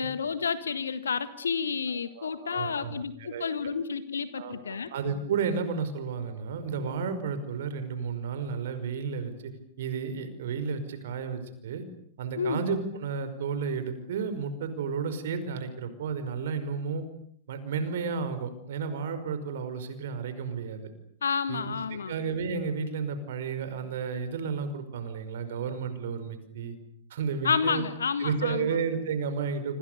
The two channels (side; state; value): both; inverted; correlation -0.49